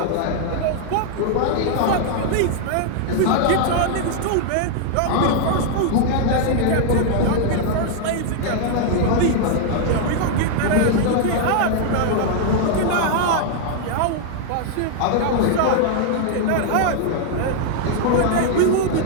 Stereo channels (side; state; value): both; different; correlation 0.00